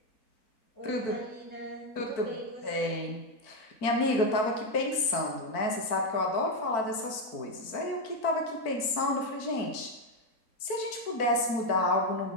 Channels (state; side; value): late; right; 4.5 ms